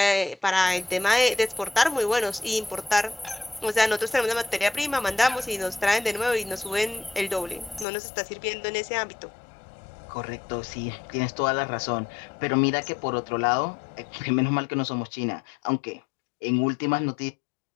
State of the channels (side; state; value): right; drops out; at 7.9 s